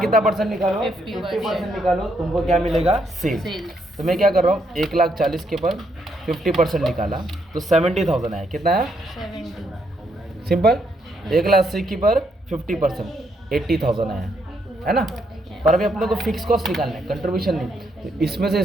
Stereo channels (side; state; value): both; normal; correlation 0.75